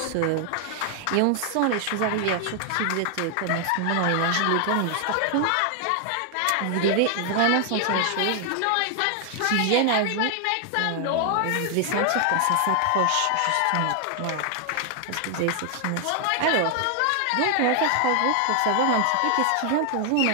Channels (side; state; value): both; different; correlation 0.00